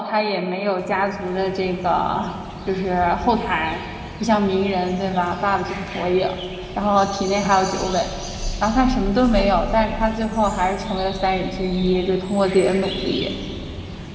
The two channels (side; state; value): both; identical; correlation 1.00